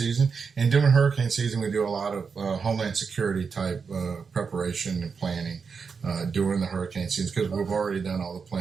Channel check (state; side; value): quieter; left; 5.6 dB